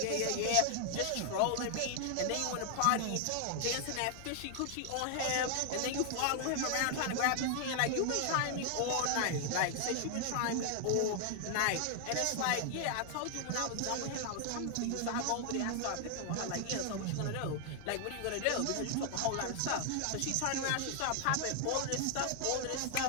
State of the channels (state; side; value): different; both; correlation 0.00